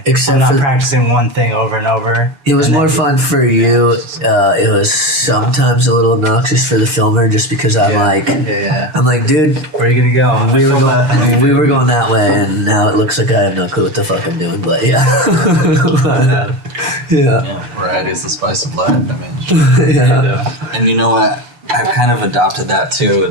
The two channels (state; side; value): late; left; 6.8 ms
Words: Except I'm for- not practicing one thing over and over. It was and more then- fun for you. It was sometimes a little obnoxious for the filmer, just because I'm like, dude, Where are you gonna go? we were going that way, and now it looks like I have no clue what the fuck I'm doing. But yeah, Yeah, variety is the spice of life. I mean, yeah. and you know what? I've kind of adopted that too.